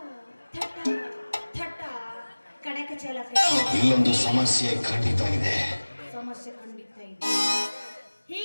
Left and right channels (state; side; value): inverted; both; correlation -1.00